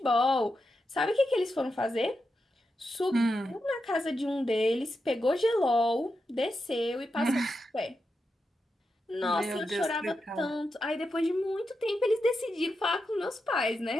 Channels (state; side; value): normal; both; correlation 0.87